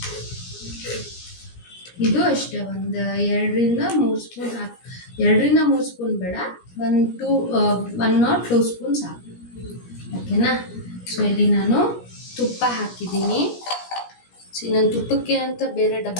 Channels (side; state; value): right; late; 17 ms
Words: ಇದು ಅಷ್ಟೇ, ಒಂದು 2-3 ಸ್ಪೂನ್ ಹಾಕಿ. 2-3 ಸ್ಪೂನ್ ಬೇಡ, 1 or 2 ಸ್ಪೂನ್ ಸಾಕು, ಓಕೆನಾ. ಸೊ ಇಲ್ಲಿ ನಾನು ತುಪ್ಪ ಹಾಕಿದ್ದೀನಿ. ನಾನು ತುಪ್ಪಕ್ಕೆ ಅಂತ ಬೇರೆ